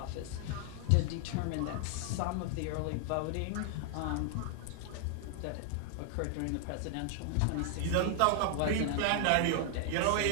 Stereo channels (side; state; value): both; different; correlation 0.00